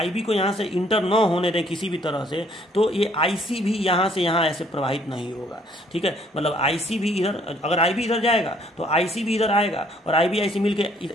को यहाँ से इंटर न होने दें किसी भी तरह से, तो ये IC भी यहाँ से यहाँ ऐसे प्रवाहित नहीं होगा, ठीक है। मतलब IC भी इधर, अगर IB इधर जाएगा तो IC भी इधर आएगा, और IB IC मिलके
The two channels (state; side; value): normal; both; correlation 0.63